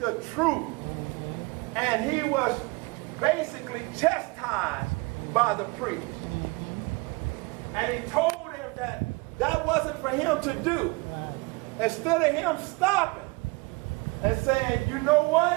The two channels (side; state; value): left; quieter; 26.8 dB